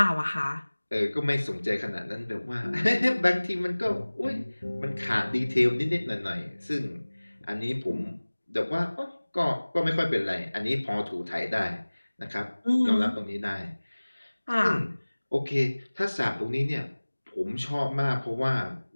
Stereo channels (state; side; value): inverted; both; correlation -1.00